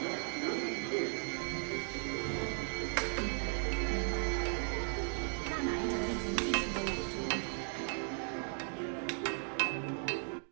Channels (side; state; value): left; silent; 53 dB below the other